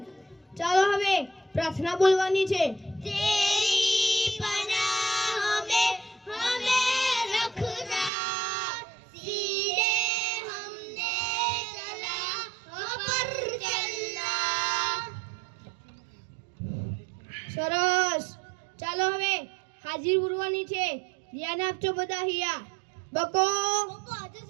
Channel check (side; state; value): left; drops out; at 8.1 s